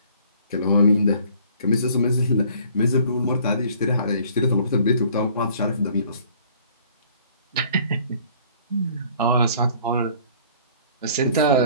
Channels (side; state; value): both; inverted; correlation -0.56